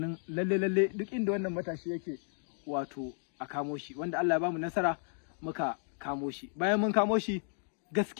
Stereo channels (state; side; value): silent; right; 56 dB below the other